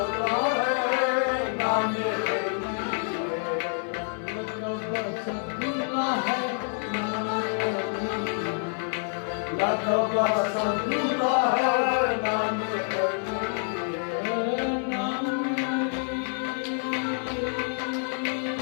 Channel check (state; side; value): silent; right; 60 dB below the other